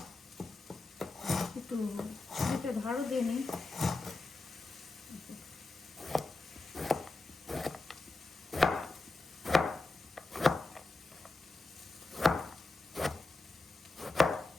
একটু ছুরিতে ধারও দিয়ে নিই।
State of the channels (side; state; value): right; quieter; 3.2 dB